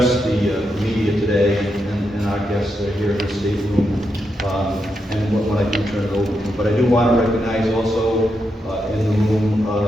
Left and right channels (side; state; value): both; normal; correlation 0.84